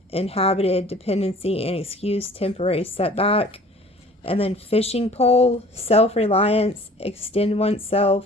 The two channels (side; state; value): both; normal; correlation 0.49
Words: inhabited, dependency, and excuse, temporary setback. And then fishing pole, self-reliance, extend